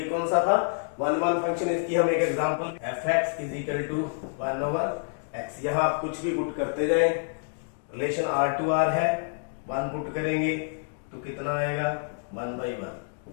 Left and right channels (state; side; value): silent; right; digital silence